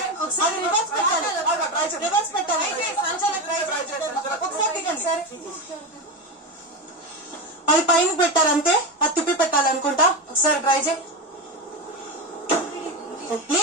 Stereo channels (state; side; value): normal; both; correlation 0.17